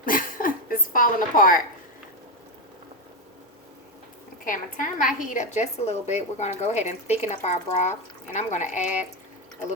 it's falling apart. Okay, I'm going to turn my heat up just a little bit. We're going to go ahead and thicken up our broth. And I'm going to add a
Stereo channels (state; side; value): normal; both; correlation 0.08